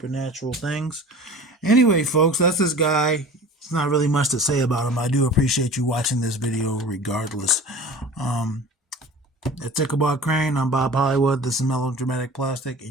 things. Anyway, folks, that's this guy. It's not really much to say about him. I do appreciate you watching this video regardless. It's Ichabod Crane. I'm Bob Hollywood. This is Melodramatic Plastic,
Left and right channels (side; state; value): both; normal; correlation 0.40